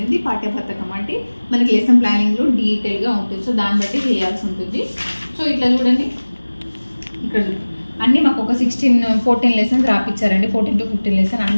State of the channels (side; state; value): both; inverted; correlation -1.00